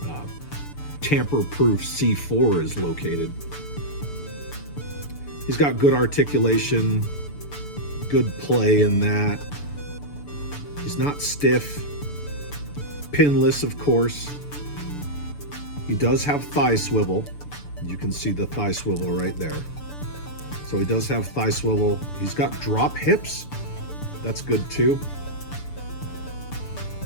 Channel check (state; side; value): late; right; 6.9 ms